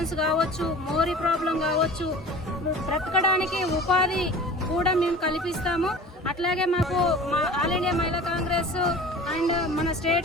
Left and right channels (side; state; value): both; normal; correlation 0.40